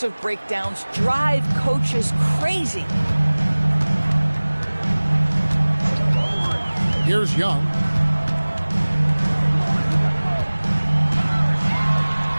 breakdowns drive coaches crazy. Here's Young.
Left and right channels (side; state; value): both; inverted; correlation -1.00